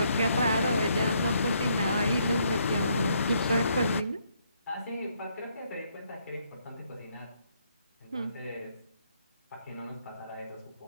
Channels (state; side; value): inverted; both; correlation -0.72